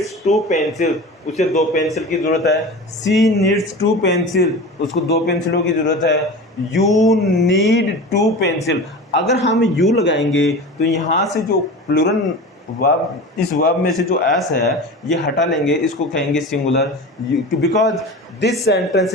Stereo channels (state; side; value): normal; both; correlation 0.32